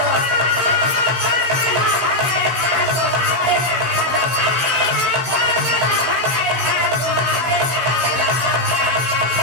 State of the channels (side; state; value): left; late; 16 ms